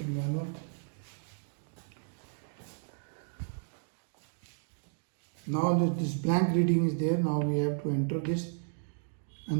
manual. Now this blank reading is there. Now we have to enter this,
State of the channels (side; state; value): left; silent; digital silence